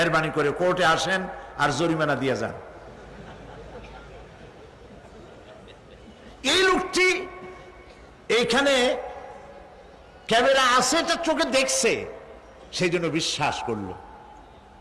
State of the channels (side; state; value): both; identical; correlation 1.00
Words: করে কোর্টে আসেন আর জরিমানা দিয়ে যান। এই লোকটি এইখানে ক্যামেরা আছে, এটা চোখে দেখছে, সেই জন্য বিশ্বাস করলো।